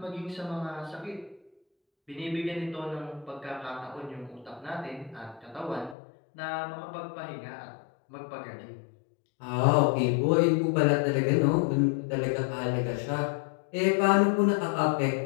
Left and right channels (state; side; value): drops out; right; at 6.0 s